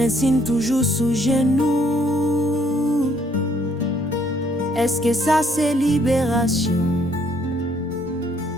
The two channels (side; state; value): both; normal; correlation 0.67